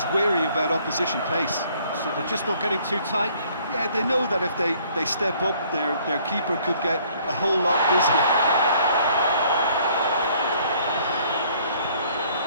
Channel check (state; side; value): inverted; both; correlation -0.61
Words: wary about opposition pace. So they're just not getting too tight. Yeah, they know that if they step up, their keeper could get a whole lot busier.